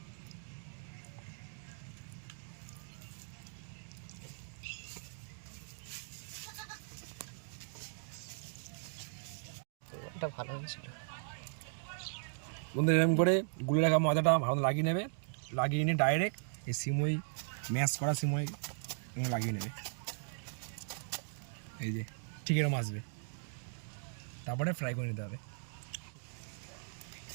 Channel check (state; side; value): silent; left; digital silence